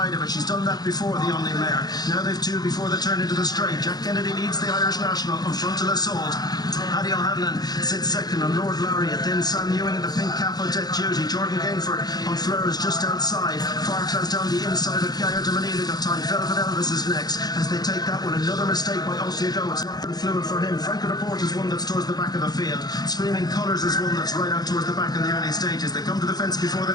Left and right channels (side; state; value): right; late; 0.19 ms